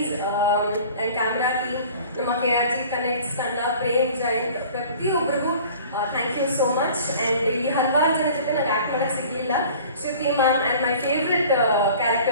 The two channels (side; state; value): both; inverted; correlation -0.46